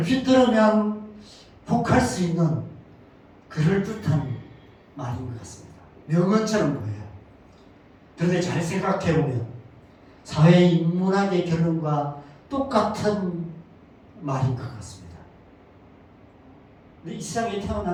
들으면 혹할 수 있는 그럴듯한 말인 것 같습니다. 명언처럼 보여요. 그런데 잘 생각해보면 사회인문학의 결론과 똑같은 말인 것 같습니다. 이 세상에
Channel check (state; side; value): identical; both; correlation 1.00